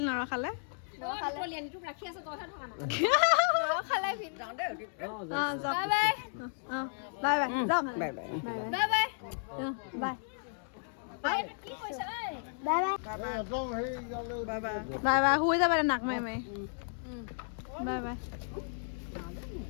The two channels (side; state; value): right; silent; digital silence